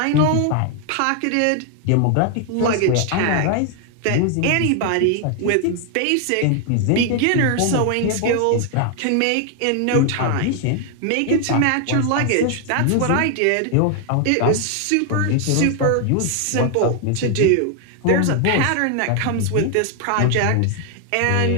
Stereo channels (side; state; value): both; different; correlation 0.00